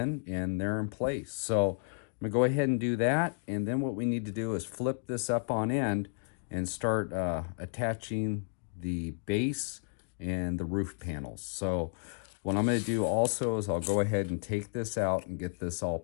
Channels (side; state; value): right; silent; digital silence